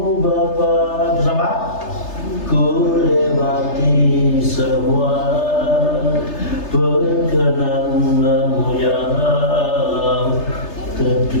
Bapa, bersama ku lewati semua perkenanmu yang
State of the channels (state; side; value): late; right; 3.3 ms